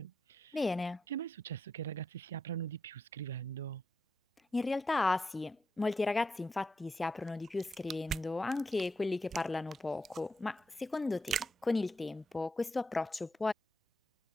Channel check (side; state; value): both; normal; correlation 0.85